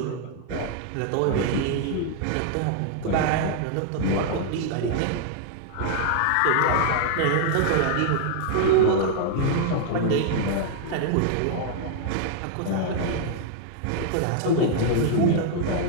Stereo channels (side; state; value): both; different; correlation -0.01